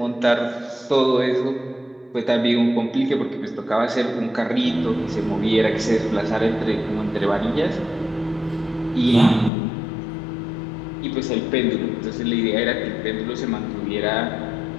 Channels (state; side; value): drops out; right; at 9.5 s